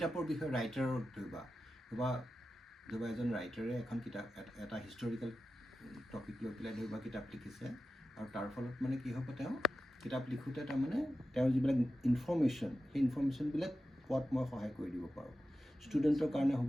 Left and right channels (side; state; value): both; normal; correlation 0.92